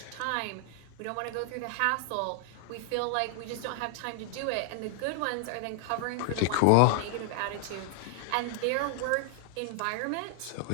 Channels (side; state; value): both; different; correlation 0.00